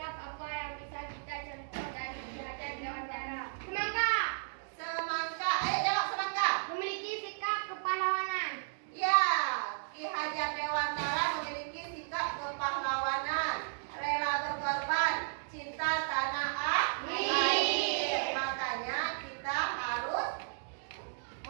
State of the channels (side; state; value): left; silent; digital silence